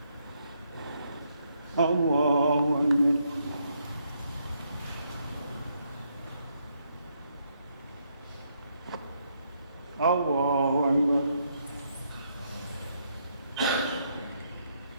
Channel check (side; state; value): both; inverted; correlation -0.75